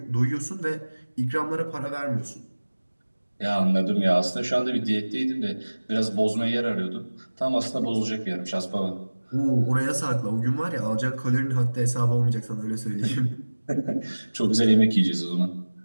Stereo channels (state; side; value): inverted; both; correlation -1.00